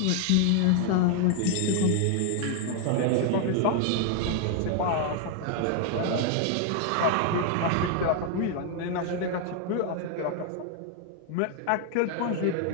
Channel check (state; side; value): different; both; correlation 0.00